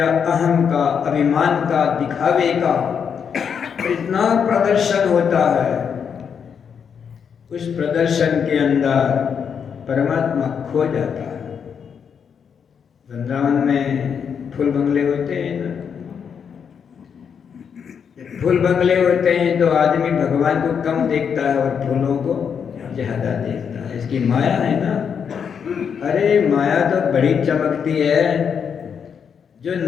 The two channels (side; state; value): right; quieter; 7.1 dB